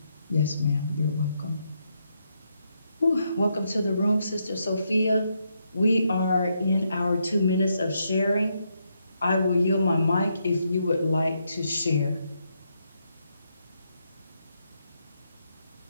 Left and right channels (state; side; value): inverted; both; correlation -0.79